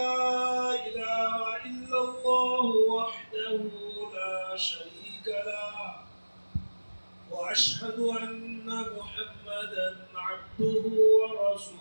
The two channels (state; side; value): inverted; both; correlation -1.00